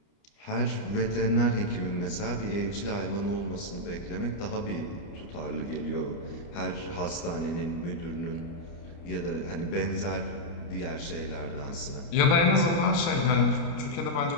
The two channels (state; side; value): late; right; 29 ms